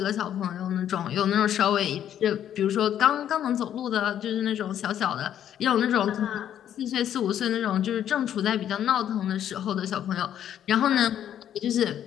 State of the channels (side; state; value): right; quieter; 10.3 dB